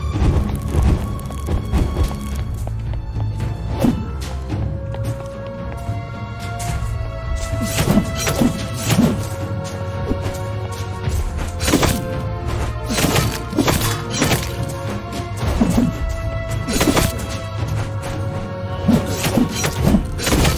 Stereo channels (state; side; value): identical; both; correlation 1.00